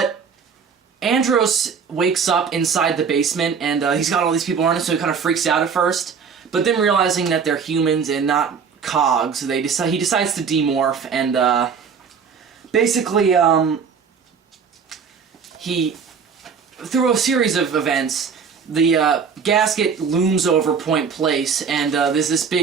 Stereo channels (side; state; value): left; quieter; 6.2 dB